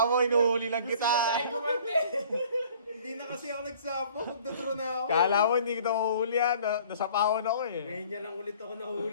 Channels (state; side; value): inverted; both; correlation -0.52